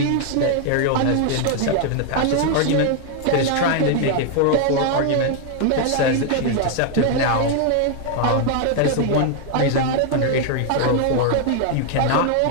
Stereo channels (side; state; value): both; different; correlation 0.00